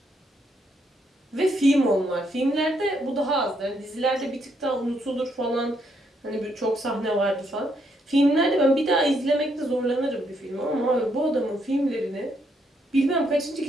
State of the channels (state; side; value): normal; both; correlation 0.75